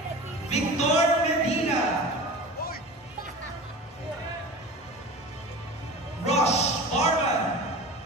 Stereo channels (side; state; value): both; normal; correlation 0.35